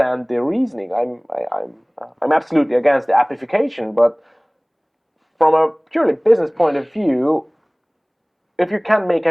their reasoning. I'm absolutely against the appification, but from a purely business point of view, if you can't make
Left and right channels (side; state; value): both; identical; correlation 1.00